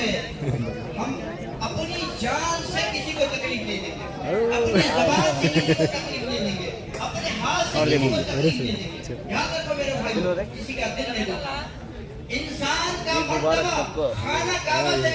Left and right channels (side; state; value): both; identical; correlation 1.00